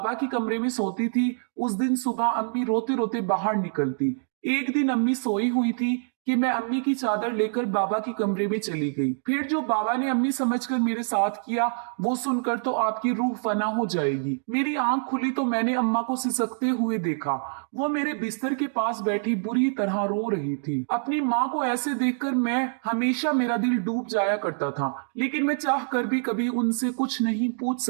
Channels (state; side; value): silent; left; digital silence